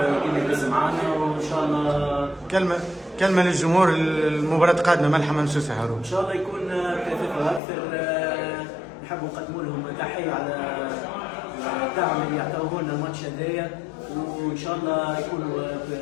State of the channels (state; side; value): drops out; right; at 7.6 s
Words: كما يدز معنا، وان شاء الله كلمه للجمهور، المباراه قادمه ملحة ممسوسه هارون. ان شاء الله يكون كثافه اكثر. نحب نقدموا لهم تحيه على الدعم اللي يعطوه لنا الماتش هذايا، وان شاء الله يكونوا